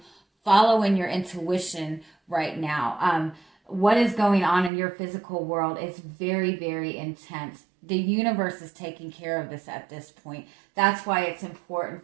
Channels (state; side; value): drops out; left; at 4.7 s